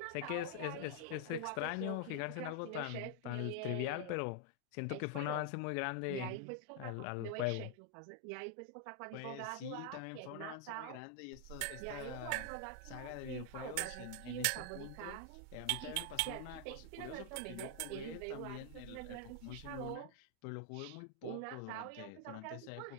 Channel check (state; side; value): different; both; correlation 0.00